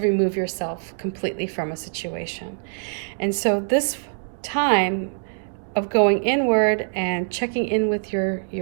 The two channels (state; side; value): silent; left; digital silence